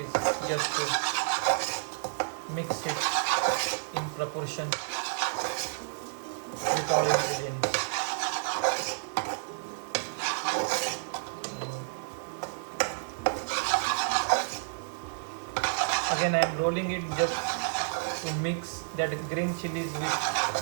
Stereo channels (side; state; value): left; silent; 56 dB below the other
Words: just to mix it in proportion with all ingredients. again I am rolling it just to mix that green chilies with